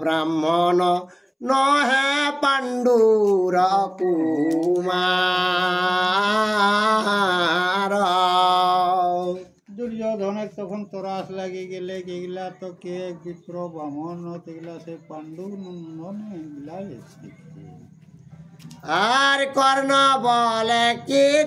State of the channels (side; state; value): both; identical; correlation 1.00